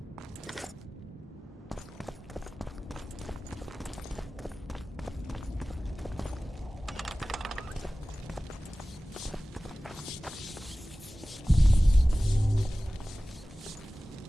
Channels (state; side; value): normal; both; correlation 0.97